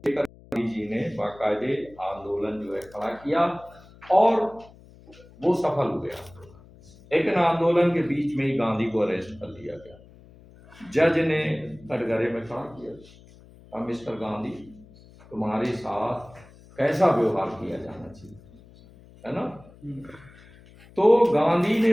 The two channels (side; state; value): left; noise; hum, 23 dB below the sound